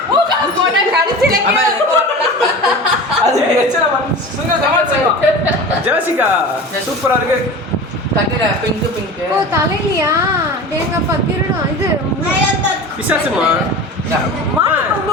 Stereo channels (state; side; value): normal; both; correlation 0.33